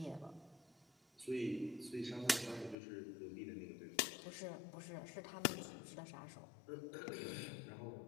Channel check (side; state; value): right; drops out; at 2.8 s